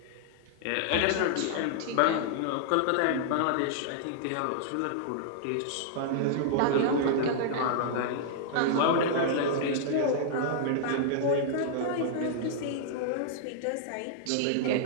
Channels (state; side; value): different; both; correlation -0.01